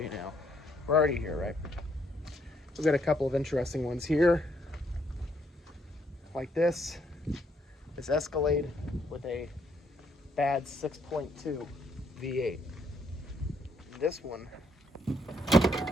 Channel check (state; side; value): normal; both; correlation 0.71